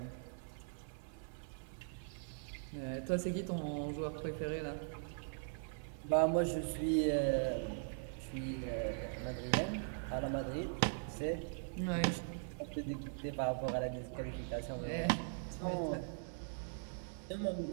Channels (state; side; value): silent; left; 51 dB below the other